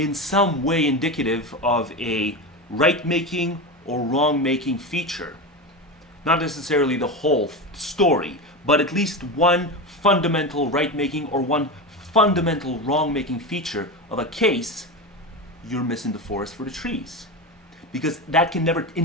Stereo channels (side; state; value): both; normal; correlation 0.20